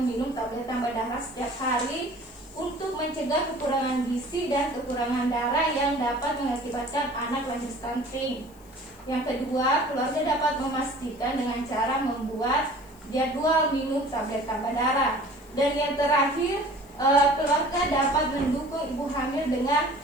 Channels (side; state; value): left; noise; hiss, 27 dB below the sound